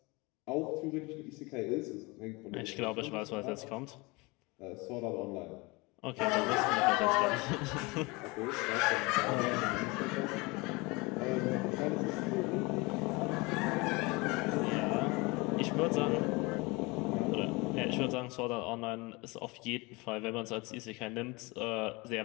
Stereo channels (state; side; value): quieter; right; 25.5 dB